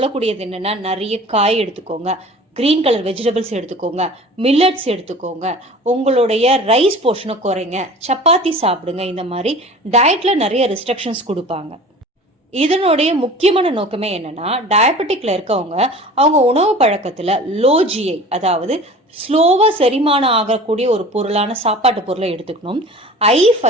என்னன்னா, நிறைய காய் எடுத்துக்கோங்க, கிரீன் கலர் வெஜிடபிள்ஸ் எடுத்துக்கோங்க, மில்லட்ஸ் எடுத்துக்கோங்க, உங்களுடைய ரைஸ் போர்ஷனை குறைங்க, சப்பாத்தி சாப்பிடுங்க. இந்த மாதிரி டயட்ல நிறைய ரெஸ்ட்ரிக்ஷன்ஸ் கொடுப்பாங்க. இதனுடைய முக்கியமான நோக்கமே என்னன்னா, டயபெட்டிக்ல இருக்கவங்க அவங்க உணவு பழக்கத்துல லோ ஜிஐ, அதாவது ஸ்லோவா செரிமானம் ஆகக்கூடிய ஒரு பொருளான சாப்பாட்டு பொருளை எடுத்துக்கணும், ஹை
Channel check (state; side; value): normal; both; correlation 0.41